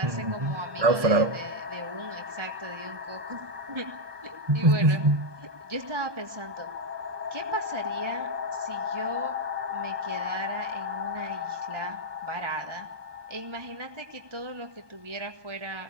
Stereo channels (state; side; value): late; left; 1.2 ms